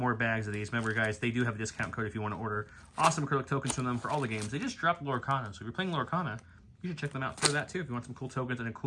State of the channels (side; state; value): both; identical; correlation 1.00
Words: bags of these. Remember, guys, they do have a discount code if you want to order awesome acrylic tokens from them for all the games. They just dropped Lorcana. So if you're playing Lorcana, you should check them out for that too if you want some cool tokens and a